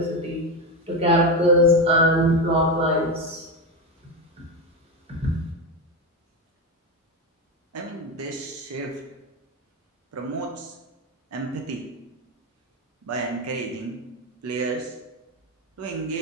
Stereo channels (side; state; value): both; normal; correlation 0.14